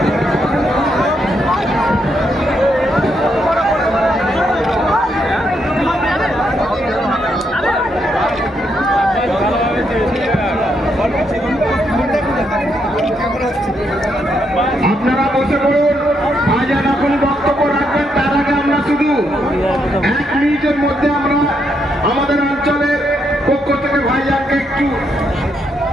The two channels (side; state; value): both; normal; correlation 0.78